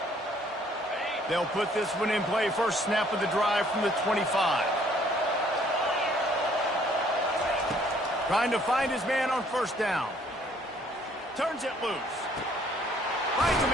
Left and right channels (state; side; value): normal; both; correlation 0.62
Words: They'll put this one in play. First snap of the drive from the 25. Trying to find his man on first down. Turns it loose. Finds a